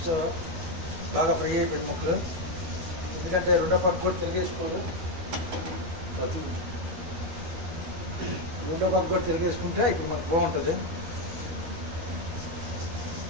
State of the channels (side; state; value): left; late; 12 ms